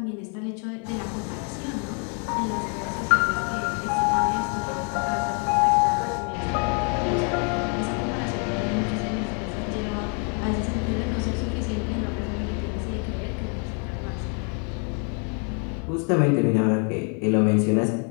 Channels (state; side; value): quieter; right; 39.5 dB